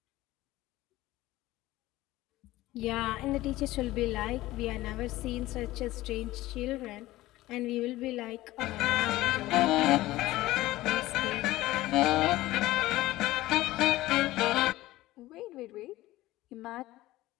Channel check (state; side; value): quieter; right; 17.2 dB